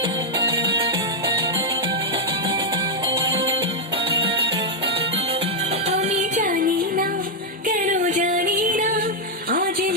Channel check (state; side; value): normal; both; correlation -0.02